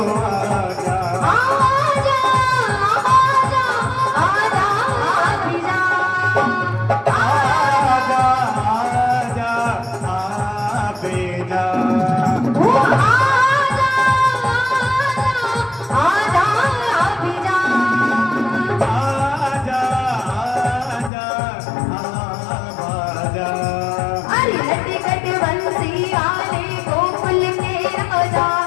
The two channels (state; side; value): drops out; right; at 21.1 s